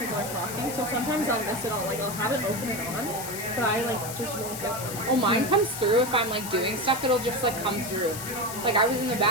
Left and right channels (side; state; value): left; noise; hiss, 8 dB below the sound